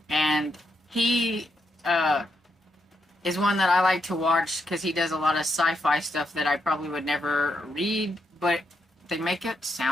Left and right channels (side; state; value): both; normal; correlation 0.80